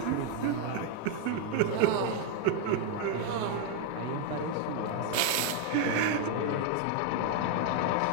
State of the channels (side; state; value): both; different; correlation 0.01